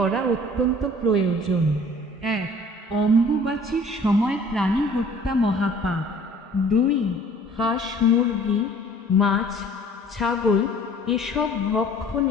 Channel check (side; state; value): both; normal; correlation 0.51